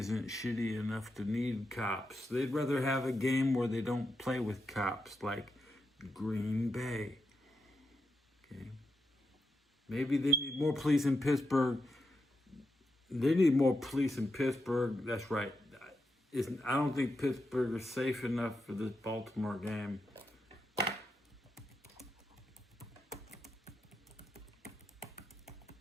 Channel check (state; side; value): normal; both; correlation 0.85